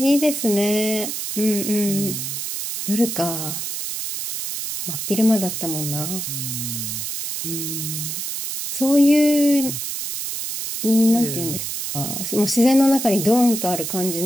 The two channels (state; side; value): noise; right; hiss, 4 dB below the sound